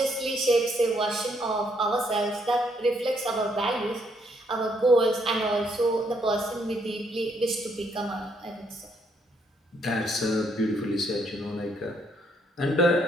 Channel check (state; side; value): normal; both; correlation 0.71